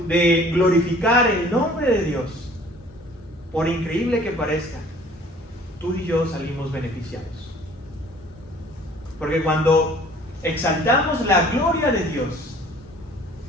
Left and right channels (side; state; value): both; normal; correlation 0.52